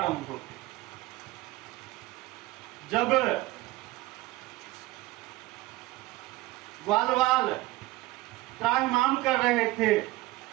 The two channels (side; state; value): left; quieter; 18.8 dB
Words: हो गई। जब ग्वालवाल त्राहिमाम कर रहे थे